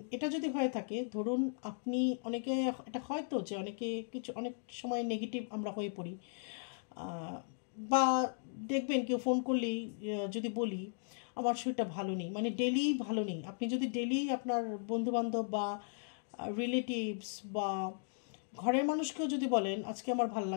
এটা যদি হয়ে থাকে, ধরুন আপনি, অনেকে এটা হয়তো যে অনেকে কিছু অনেক সময় নেগেটিভ আমরা হয়ে পড়ি, আহ, বা দেখবেন কেউ ফোন করলেই যদি বলি আমার শরীরটা ভালো নেই, মানে ডেলি ভালো নেই, আপনি যদি ডেলি আপনার বন্ধুবান্ধব বা রিলেটিভস বা ঘরের মানুষকেও যদি বলেন আজকে আমার ভাল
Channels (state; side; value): silent; right; digital silence